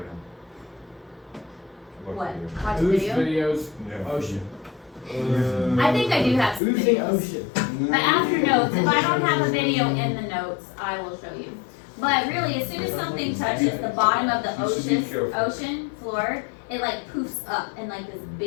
now. What? Watch see. the Whose video? videos? Yeah. Ocean. I think I do have some Oozing videos. ocean. But after notes, if I don't have a video in the notes, I will show you. But really, as soon as something touches the bottom of the You should be careful. ocean floor, it like poofs up in like this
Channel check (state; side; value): drops out; right; at 6.6 s